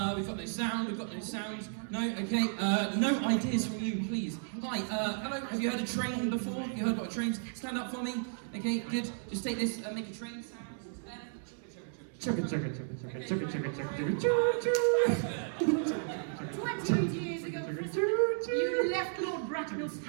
We've got no sound. No, okay. No ideas from you, please. Hi, hello. Have you heard a train before? You heard what a train's? Stand up for me. Okay, good. Just take this and make a train sound. Chugga chugga chugga chugga chugga chugga chugga chugga chugga. 20 years ago, Prism, you left Lord Bracknell's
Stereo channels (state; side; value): silent; left; digital silence